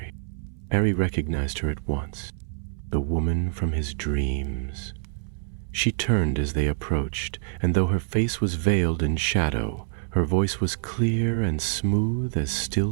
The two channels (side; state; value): left; silent; 61 dB below the other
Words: Harry recognized her at once, the woman from his dreams. She turned as they approached, and though her face was veiled in shadow, her voice was clear and smooth as